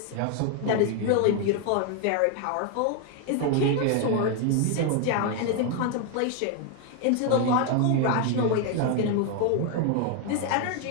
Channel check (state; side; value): different; both; correlation 0.01